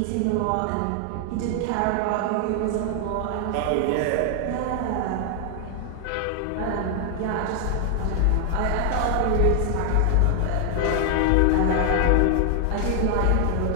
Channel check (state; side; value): different; both; correlation 0.00